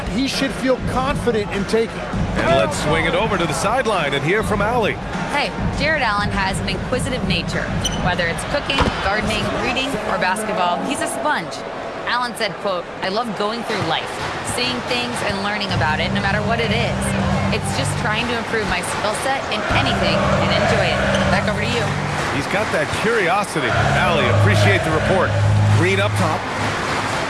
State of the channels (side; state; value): both; identical; correlation 1.00